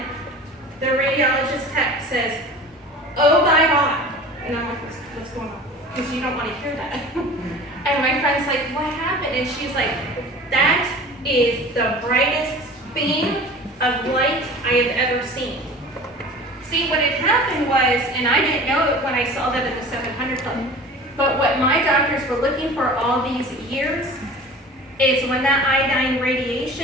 the radiologist text says, oh my God. And I'm like, what's going on? Because you don't want to hear that. And my friend's like, what happened? And she's like, that is the brightest beam of light I have ever seen. See, what had happened was, and I didn't know it when I saw that at the 700 Club, but what my doctors were looking for all these years is when that iodine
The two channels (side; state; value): both; normal; correlation 0.40